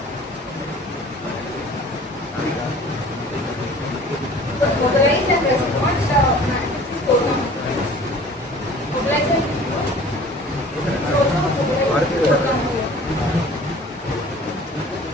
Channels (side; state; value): both; normal; correlation 0.47